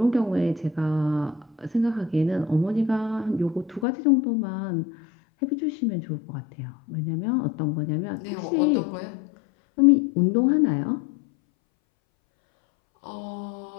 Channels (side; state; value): right; drops out; at 3.9 s